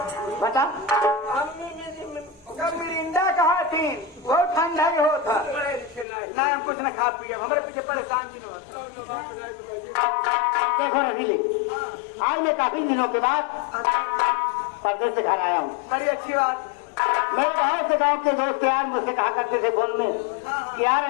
बता। जब मिरिंडा कहा थी वो ठंडा ही होता ना हम कुछ न खा पिए हमारे पीछे परेशान की न देखो रसीली आज मैं काफी दिनों के बाद परदेश से घर आया हूँ। बड़ी अच्छी बात मेरे बाहर से गांव के दोस्त यार मुझसे कहा करते थे फोन में कि यार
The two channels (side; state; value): right; drops out; at 6.1 s